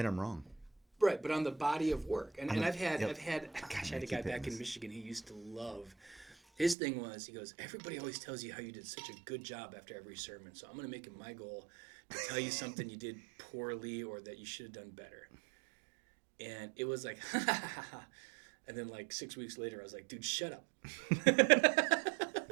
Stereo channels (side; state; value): left; drops out; at 6.8 s